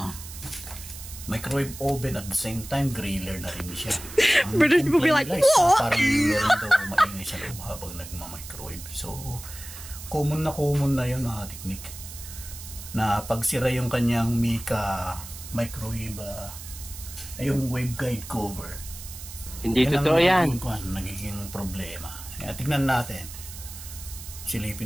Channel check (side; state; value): right; noise; hiss, 13 dB below the sound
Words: microwave oven at the same time griller na rin siya. British people be like, what? Parang meron daw maingay sa loob habang nagma-microwave. So, common na yun mga kateknik, na pagsira yung kanyang Mica microwave, yung waveguide cover. Hindi totoo yan. Nagiging problema. Kaya tignan natin.